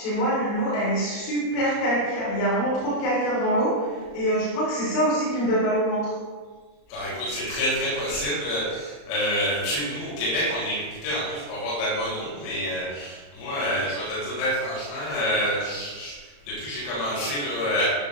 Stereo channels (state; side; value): late; right; 34 ms